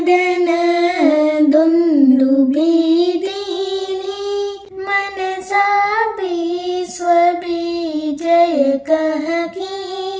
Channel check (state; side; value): identical; both; correlation 1.00